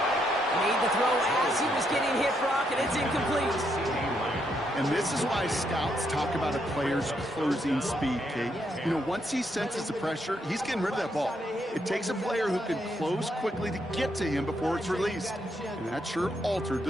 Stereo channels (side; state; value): both; normal; correlation 0.77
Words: Made the throw as he was getting hit, Brock, and it's incomplete. And this is why scouts talk about a player's closing speed, Kate. You know, once he senses the pressure, he's getting rid of that ball. It takes a player who can close quickly to get to him before it's released. And that sure altered